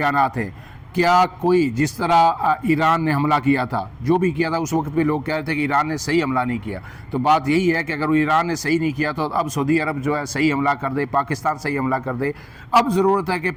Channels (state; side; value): identical; both; correlation 1.00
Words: ہیں۔ کیا کوئی جس طرح ایران نے حملہ کیا تھا، جو بھی کیا تھا اس وقت بھی لوگ کہہ رہے تھے کہ ایران نے صحیح حملہ نہیں کیا، تو بات یہی ہے کہ اگر وہ ایران نے صحیح نہیں کیا تو اب سعودی عرب جو ہے صحیح حملہ کر دے، پاکستان صحیح حملہ کر دے۔ اب ضرورت ہے کہ